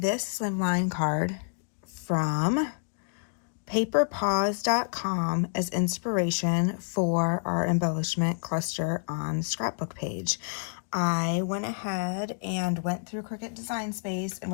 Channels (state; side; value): silent; right; digital silence